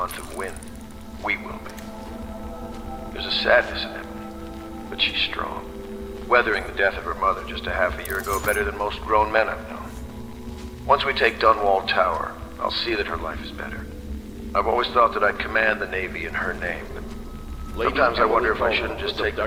of wind, we will be. There's a sadness in Emily, but she's strong. Weathering the death of her mother just a half a year ago better than most grown men I've known. Once we take Dunwall Tower, I'll see that her life is better. I've always thought that I'd command the Navy in her name, but sometimes I wonder if I shouldn't just take the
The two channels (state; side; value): identical; both; correlation 1.00